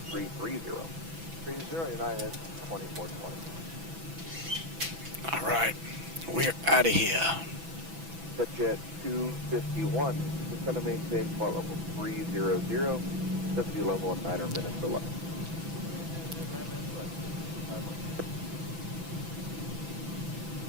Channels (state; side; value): late; left; 6.0 ms